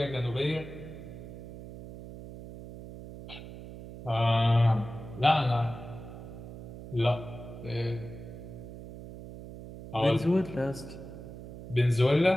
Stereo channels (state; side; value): noise; right; hum, 13 dB below the sound